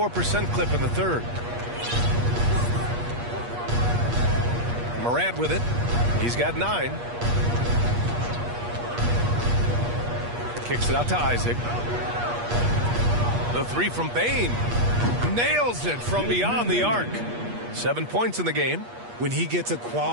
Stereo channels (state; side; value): late; left; 8.4 ms